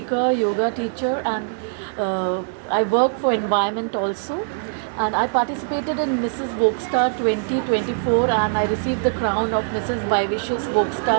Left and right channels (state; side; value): silent; left; digital silence